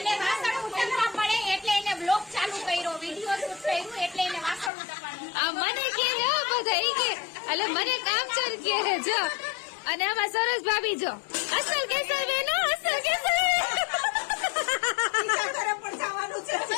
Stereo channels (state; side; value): drops out; right; at 4.7 s